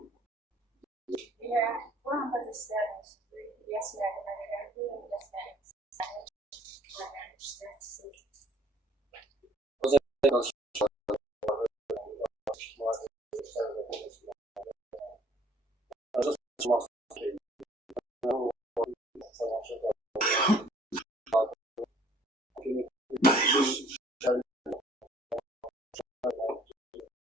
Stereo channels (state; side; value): normal; both; correlation 0.57